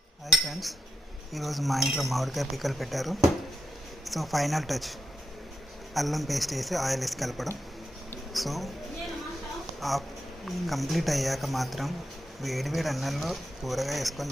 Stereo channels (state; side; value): normal; both; correlation 0.86